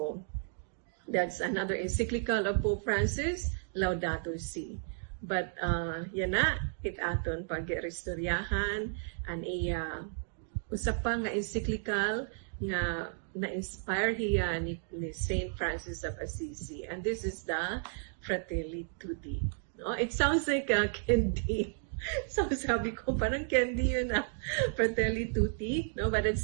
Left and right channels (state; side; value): silent; left; digital silence